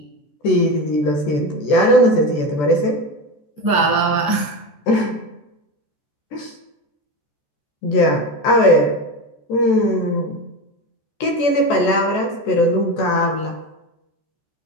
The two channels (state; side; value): late; right; 14 ms